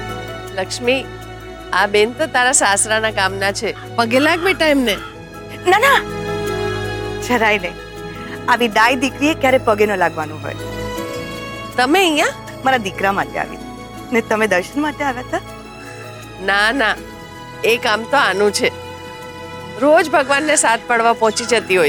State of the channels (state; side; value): identical; both; correlation 1.00